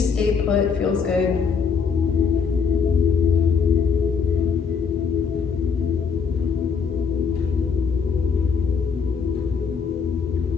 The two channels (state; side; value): quieter; right; 5.9 dB